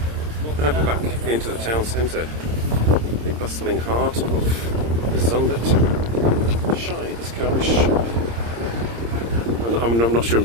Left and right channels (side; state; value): left; late; 26 ms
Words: And we're back into the town centre, the bustling heart of the Zundert. Shy, this car is shy. I'm not sure I'm